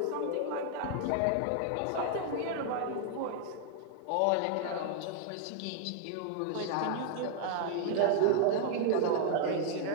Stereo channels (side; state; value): both; different; correlation 0.00